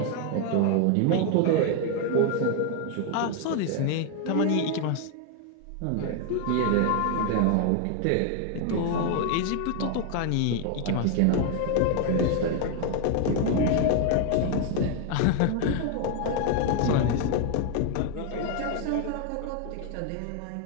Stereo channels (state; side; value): different; both; correlation 0.01